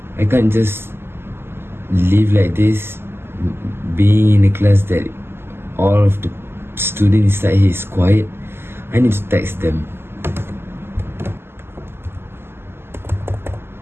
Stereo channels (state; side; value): late; left; 0.12 ms